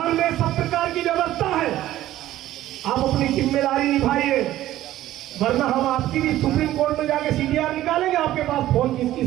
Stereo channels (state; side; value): quieter; left; 14.2 dB